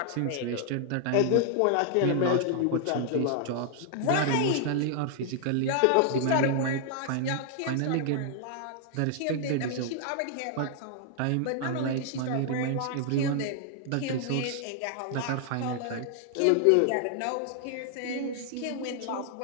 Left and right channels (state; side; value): different; both; correlation 0.00